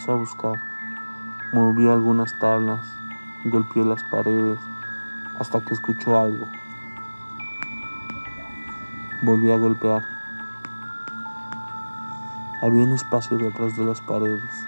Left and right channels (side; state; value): both; inverted; correlation -1.00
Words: a buscar. Movió algunas tablas, golpeó las paredes, hasta que escuchó algo. Volvió a golpear. Había un espacio detrás de las paredes.